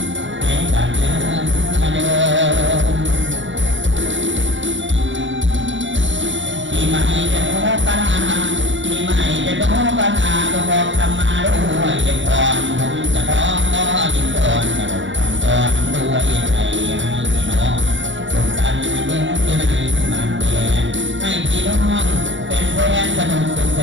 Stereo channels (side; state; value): left; late; 0.55 ms